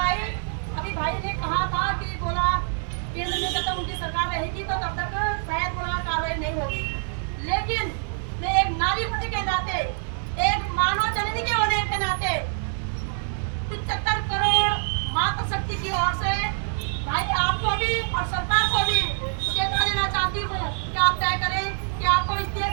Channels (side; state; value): left; silent; 61 dB below the other